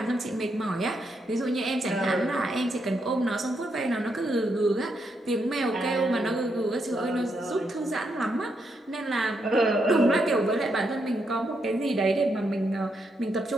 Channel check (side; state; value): both; normal; correlation 0.80